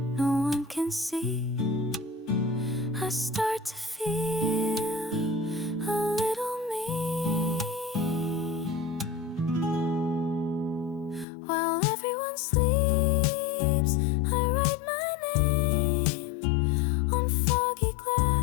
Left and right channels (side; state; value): right; drops out; at 11.2 s